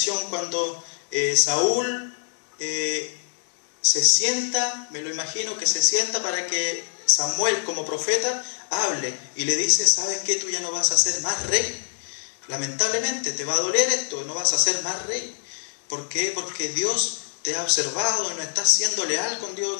cuando Saúl se sienta, me lo imagino que se sienta para que Samuel como profeta hable y le dice, ¿sabes qué? Tú ya no vas a ser más rey. Lamentablemente te va a doler esto, no vas a ser más rey. ¿Por qué? Porque Dios te ha observado y no estás siendo leal con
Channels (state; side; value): silent; right; digital silence